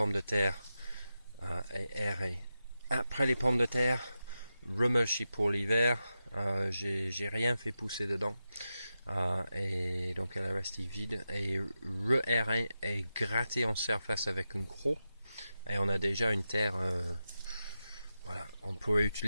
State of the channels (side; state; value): both; inverted; correlation -0.90